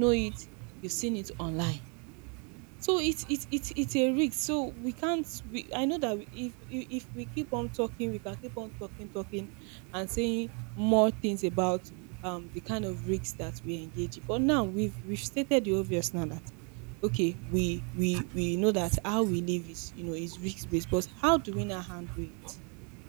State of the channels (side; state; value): left; quieter; 36.5 dB